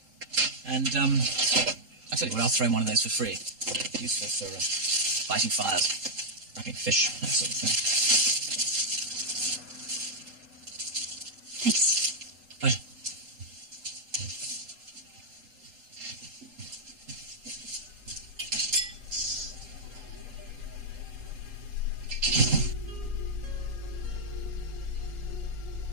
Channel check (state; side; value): late; left; 3.8 ms